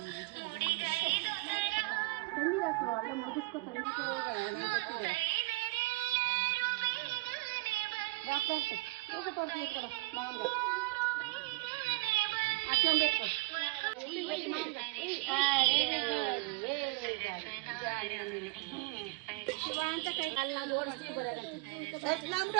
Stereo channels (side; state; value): left; quieter; 23.6 dB